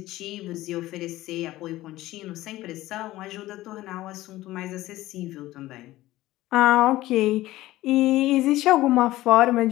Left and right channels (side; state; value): right; quieter; 16.6 dB